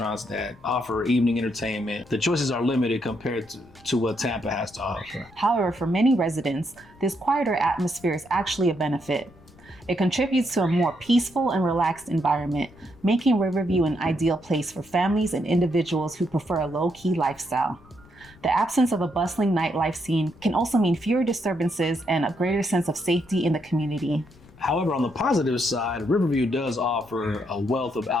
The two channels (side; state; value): left; noise; rumble, 25 dB below the sound